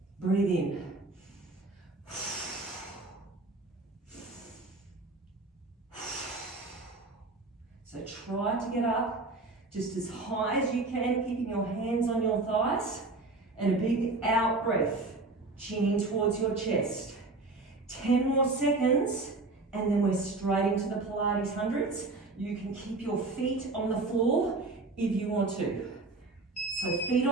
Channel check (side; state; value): left; quieter; 3.4 dB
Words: Breathe in. So try to get up Just as high as you can, keeping your hands on your thighs. And a big out breath, chin in towards your chest. 10 more seconds, and then we're straight into the Pilates hundreds. You can keep your feet on the floor if you want to. So feet